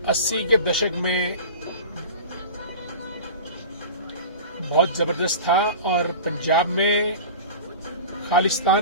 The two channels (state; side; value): inverted; both; correlation -0.34